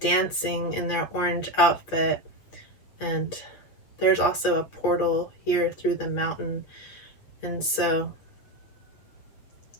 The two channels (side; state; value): right; late; 8.1 ms